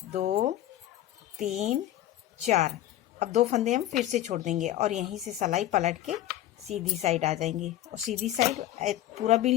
2 3 4, अब 2 फंदे हम फिर से छोड़ देंगे, और यहीं से सिलाई पलट के सीधी साइड आ जाएंगे, और सीधी साइड पूरा बिन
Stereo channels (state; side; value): quieter; right; 13.3 dB